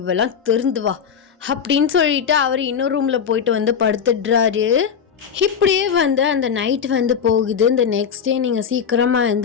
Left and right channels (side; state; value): right; quieter; 7.2 dB